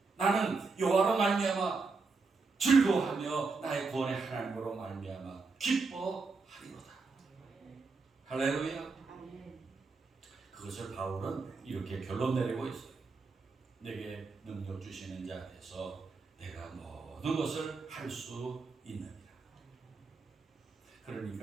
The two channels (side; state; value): left; quieter; 4.3 dB